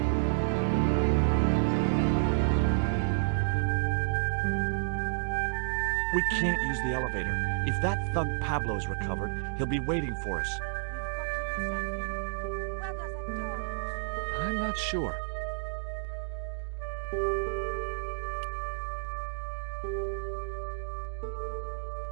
We can't use the elevator. If that thug Pablo's recovered, he'll be waiting for us. We've got to do something. Where does that door lead to? I'm not sure.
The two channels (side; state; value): left; silent; digital silence